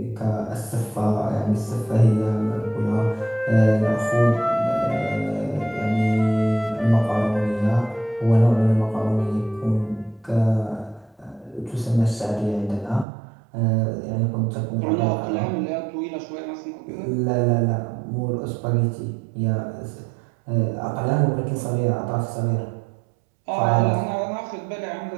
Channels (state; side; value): drops out; left; at 13.1 s